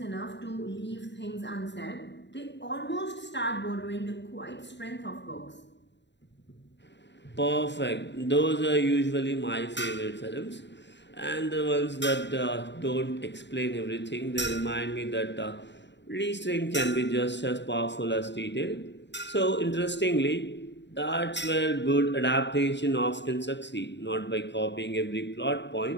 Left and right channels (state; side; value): late; right; 0.52 ms